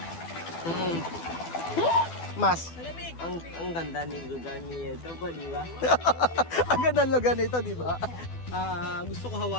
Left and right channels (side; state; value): right; late; 12 ms